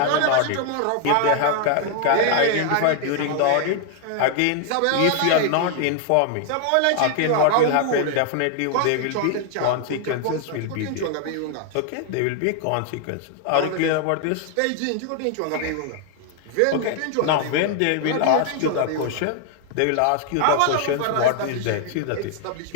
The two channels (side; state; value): both; different; correlation 0.00